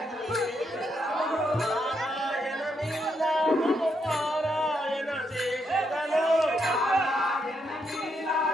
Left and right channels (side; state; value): both; normal; correlation 0.78